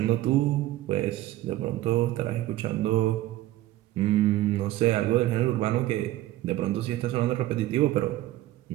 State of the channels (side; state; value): left; quieter; 15.6 dB